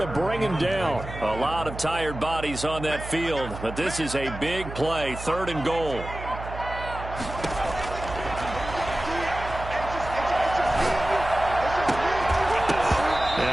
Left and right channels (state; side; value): noise; right; hum, 10 dB below the sound